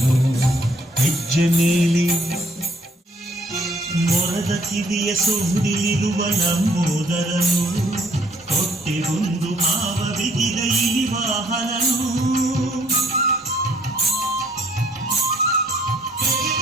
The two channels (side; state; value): both; normal; correlation 0.63